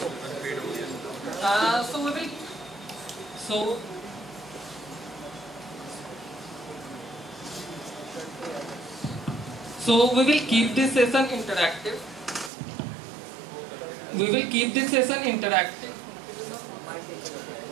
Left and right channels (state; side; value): drops out; left; at 12.5 s